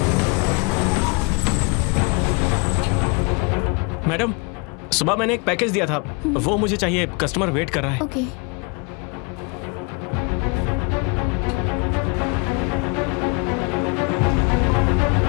Madam, सुबह मैंने एक package दिया था, वो मुझे चाहिए। Customer wait कर रहा है। ओके।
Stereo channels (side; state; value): right; quieter; 30.8 dB